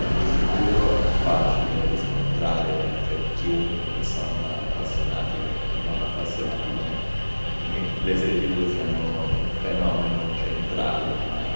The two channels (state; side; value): inverted; both; correlation -1.00